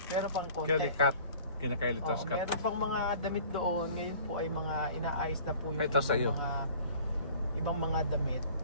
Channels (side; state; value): both; inverted; correlation -0.47